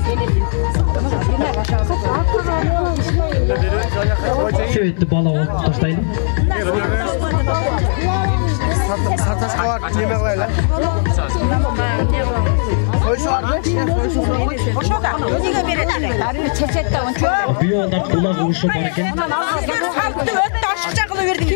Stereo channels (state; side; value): silent; right; 60 dB below the other